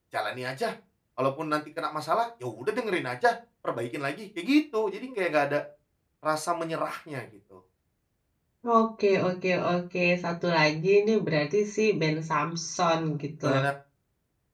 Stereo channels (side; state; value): both; identical; correlation 1.00